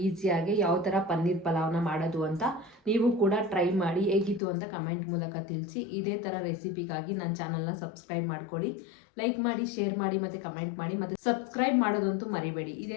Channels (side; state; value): right; drops out; at 4.4 s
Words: ಈಸಿಯಾಗಿ ಯಾವ ಥರ ಪನ್ನೀರ್ ಪಲಾವ್ನ ಮಾಡೋದು ಅಂತ. ನೀವು ಕೂಡ ಟ್ರೈ ಮಾಡಿ ಹೇಗಿತ್ತು ಅಂತ ಕಮೆಂಟ್ ಮೂಲಕ ತಿಳಿಸಿ. ಇದೇ ಥರ ರೆಸಿಪಿಗಾಗಿ ನನ್ನ ಚಾನಲ್ನ ಸಬ್ಸ್ಕ್ರೈಬ್ ಮಾಡ್ಕೊಳ್ಳಿ. ಲೈಕ್ ಮಾಡಿ, ಶೇರ್ ಮಾಡಿ ಮತ್ತು ಕಮೆಂಟ್ ಮಾಡಿ. ಮತ್ತು ಸಬ್ಸ್ಕ್ರೈಬ್ ಮಾಡೋದಂತೂ ಮರಿಬೇಡಿ.